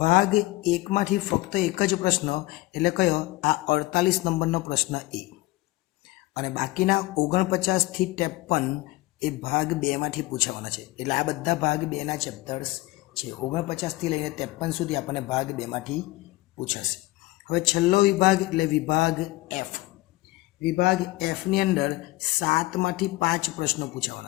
ભાગ 1માંથી ફક્ત એક જ પ્રશ્ન, એટલે કયો? આ 48 નંબરનો પ્રશ્ન એ. અને બાકીના 49 થી 53 એ ભાગ 2માંથી પૂછાવાના છે. એટલે આ બધા ભાગ 2ના ચેપ્ટર્સ છે. 49 થી લઈને 53 સુધી આપણને ભાગ 2માંથી પૂછાશે. હવે છેલ્લો વિભાગ એટલે વિભાગ એફ. વિભાગ એફની અંદર 7માંથી 5 પ્રશ્નો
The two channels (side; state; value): right; quieter; 19.7 dB